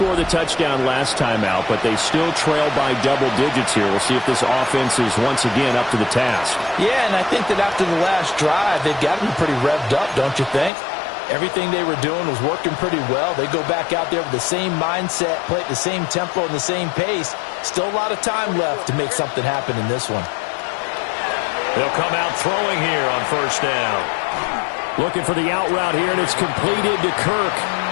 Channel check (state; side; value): drops out; right; at 10.7 s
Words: the touchdown last time out, but they still trail by double digits here. We'll see if this offense is once again up to the task. Yeah, and I think that after the last drive, they've got to be pretty revved up, don't you think? Everything they were doing was working pretty well. They go back out there with the same mindset, play at the same tempo and the same pace. Still a lot of time left to make something happen in this one. They'll come out throwing here on first down. Looking for the out route here, and it's completed to Kirk.